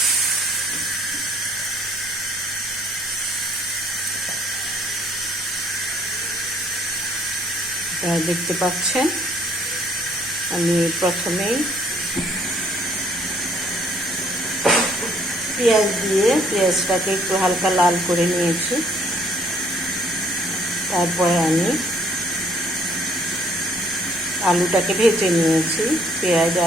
দেখতে পাচ্ছেন আমি প্রথমেই পেঁয়াজ দিয়ে পেঁয়াজটাকে একটু হালকা লাল করে নিয়েছি। তারপরে আমি আলুটাকে ভেজে নিয়েছি, পেঁয়াজ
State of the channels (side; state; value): both; normal; correlation 0.63